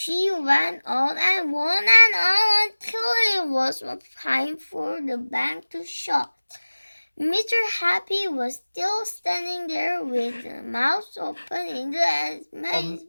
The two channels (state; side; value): inverted; both; correlation -1.00